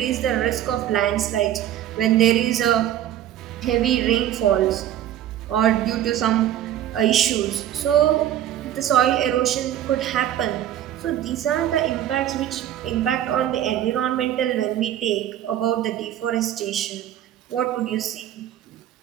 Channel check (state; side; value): quieter; left; 11.7 dB